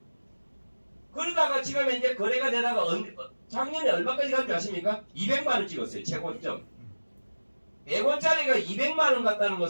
그러다가 지금 이제 거래가 되다가 작년에 얼마까지 간 줄 아십니까? 200만 원 찍었어요. 최고점. 100원짜리가 200만 원 갔다는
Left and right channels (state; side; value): inverted; both; correlation -1.00